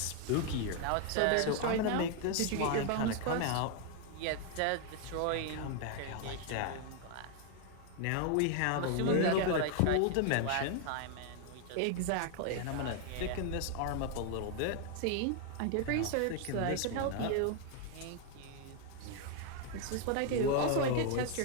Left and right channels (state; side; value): different; both; correlation 0.00